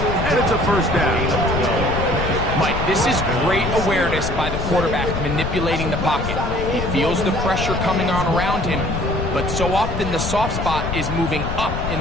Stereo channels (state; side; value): noise; left; rumble, 4 dB below the sound